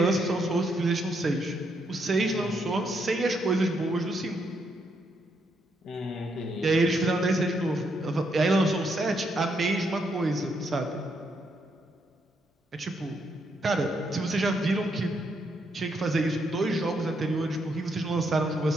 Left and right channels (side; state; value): both; normal; correlation 0.77